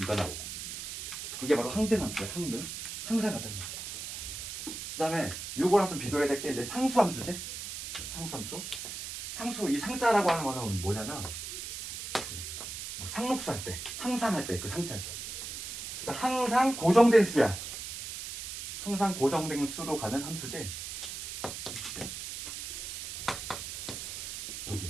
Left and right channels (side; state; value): right; noise; hiss, 7 dB below the sound